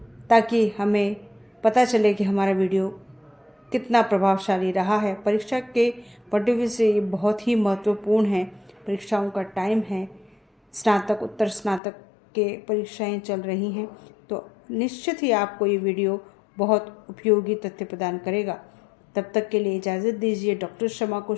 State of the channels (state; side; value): drops out; right; at 11.8 s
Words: ताकि हमें पता चले कि हमारा वीडियो कितना प्रभावशाली रहा है। परीक्षा के पॉइंट ऑफ व्यू से ये बहुत ही महत्वपूर्ण है। परीक्षाओं का टाइम है, स्नातक उत्तर स्नातक के परीक्षाएं चल रही हैं, तो निश्चित ही आपको ये वीडियो बहुत उपयोगी तथ्य प्रदान करेगा। तब तक के लिए इजाज़त दीजिए डॉक्टर शमा को।